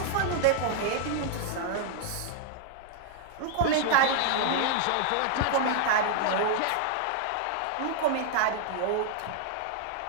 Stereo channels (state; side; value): different; both; correlation 0.00